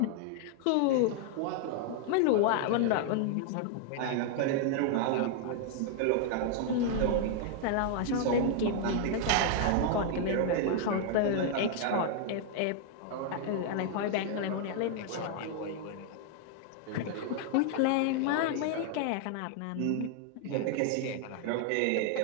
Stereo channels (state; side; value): different; both; correlation 0.00